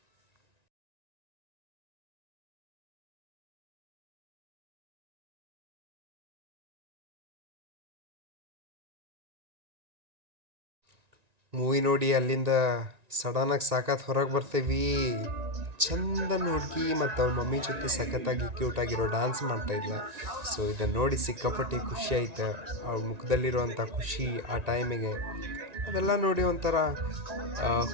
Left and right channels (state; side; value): late; left; 1.9 ms